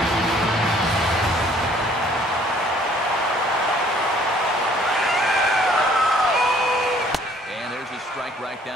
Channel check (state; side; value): normal; both; correlation 0.59